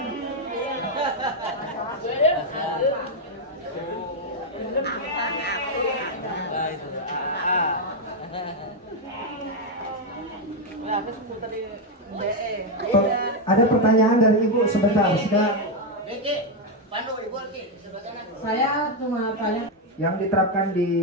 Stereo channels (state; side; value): normal; both; correlation 0.03